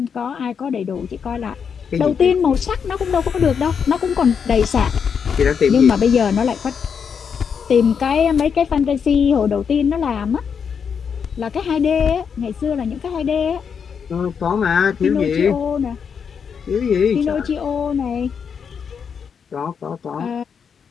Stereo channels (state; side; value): quieter; right; 6.8 dB